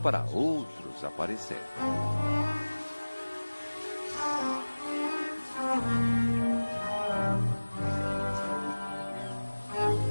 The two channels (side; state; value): both; inverted; correlation -1.00